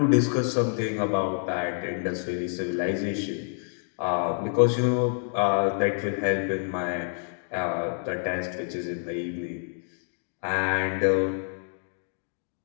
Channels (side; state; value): right; silent; digital silence